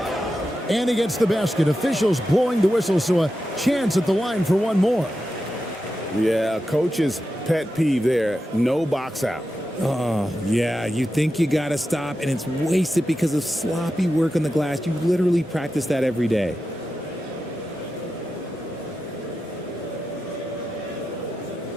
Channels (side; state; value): both; normal; correlation 0.90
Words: And he gets the basket. Officials blowing the whistle, so a chance at the line for one more. Yeah, coach's pet peeve there. No box out. Oh, yeah, you think you got to stop, and it's wasted because of sloppy work on the glass. You literally practice that every day.